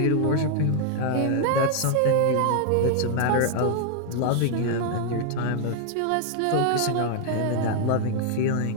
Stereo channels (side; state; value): both; different; correlation 0.00